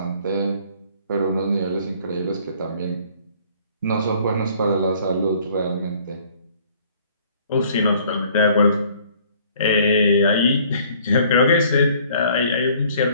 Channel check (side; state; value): both; inverted; correlation -0.57